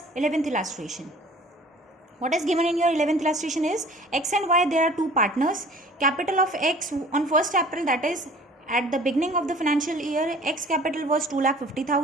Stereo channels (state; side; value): normal; both; correlation 0.48